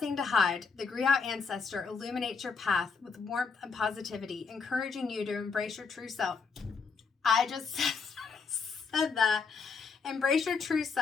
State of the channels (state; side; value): quieter; right; 5.2 dB